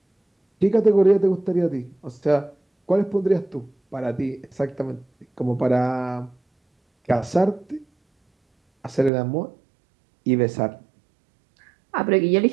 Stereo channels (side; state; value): left; drops out; at 9.1 s